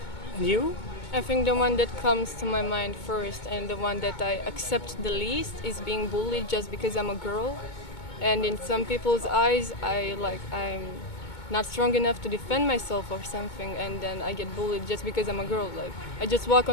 And you? I think the one that comes to my mind first and the one that I accept the least is being bullied just because I'm a girl. And in some people's eyes, I'm not strong enough to defend myself or something, and then I get bullied just because I'm a girl. Like I just walk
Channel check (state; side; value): late; right; 2.2 ms